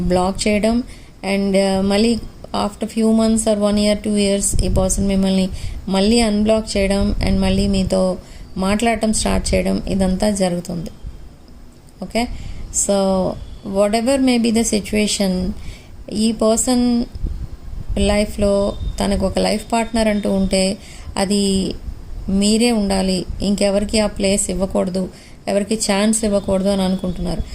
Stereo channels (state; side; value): identical; both; correlation 1.00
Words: బ్లాక్ చేయడం అండ్ మళ్ళీ after few months are 1 year 2 years ఈ పర్సన్ మిమ్మల్ని మళ్ళీ అన్బ్లాక్ చేయడం అండ్ మళ్ళీ మీతో మాట్లాడటం స్టార్ట్ చేయడం, ఇదంతా జరుగుతుంది. Okay, so whatever may be the situation, ఈ పర్సన్ లైఫ్లో తనకు ఒక లైఫ్ పార్ట్నర్ అంటూ ఉంటే అది మీరే ఉండాలి, ఇంకెవరికి ఆ ప్లేస్ ఇవ్వకూడదు, ఎవరికి ఛాన్స్ ఇవ్వకూడదు అని అనుకుంటున్నారు.